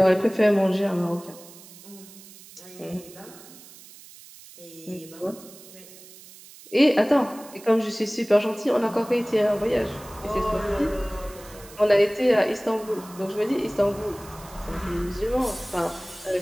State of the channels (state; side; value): noise; right; hiss, 20 dB below the sound